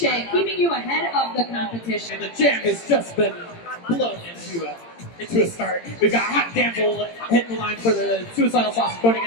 keeping you ahead of the competition. And the jam has just been blown into a start. We've got Hot Damsel hitting the line for the Suicidal Sauce, going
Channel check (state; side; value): late; right; 17 ms